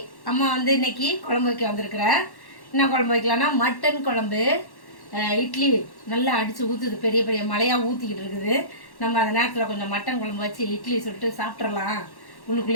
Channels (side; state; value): right; late; 1.1 ms